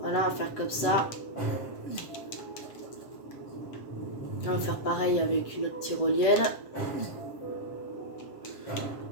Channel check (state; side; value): late; right; 7.8 ms